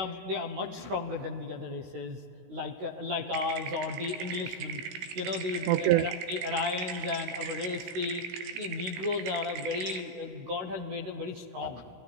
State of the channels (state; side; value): late; left; 16 ms